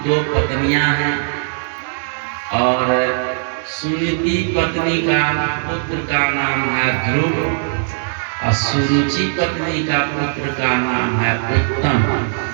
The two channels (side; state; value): left; silent; 63 dB below the other